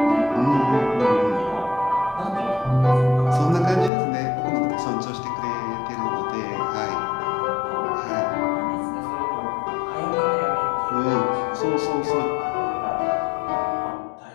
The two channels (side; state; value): right; drops out; at 3.9 s